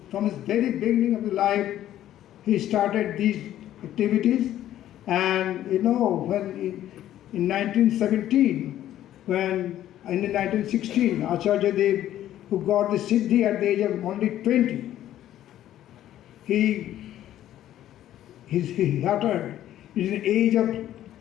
from his very beginning of his life, he started these activities. And when in 1917, when in 1916, Acharya Dev, who got the Siddhi at the age of only 20, he uttered, it is an age of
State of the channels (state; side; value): quieter; right; 12.4 dB